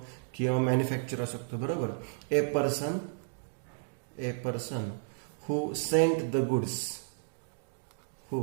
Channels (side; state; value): left; silent; digital silence